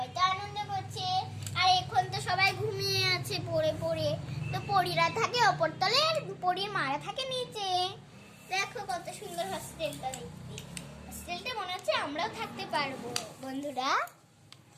তো আনন্দ করছে। আর এখন তো সবাই ঘুমিয়ে আছে পড়ে পড়ে। তো পরীরা থাকে ওপর তলে আর পরীর মারা থাকে নিচে। দেখো কত সুন্দর হোস্টেলটা দেখতে। হোস্টেলটা মনে হচ্ছে আমরাও থাকতে পারবো বন্ধুরা।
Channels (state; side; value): identical; both; correlation 1.00